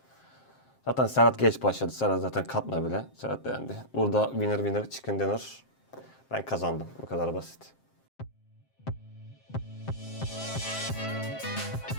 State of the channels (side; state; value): right; late; 7.6 ms